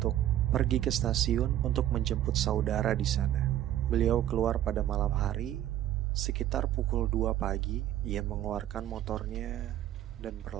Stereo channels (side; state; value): left; quieter; 12.4 dB